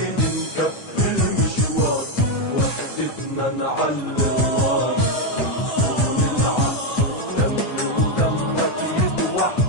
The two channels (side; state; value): right; late; 8.9 ms